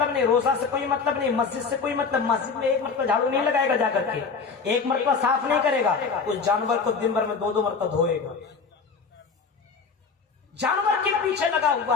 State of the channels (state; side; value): quieter; right; 5.1 dB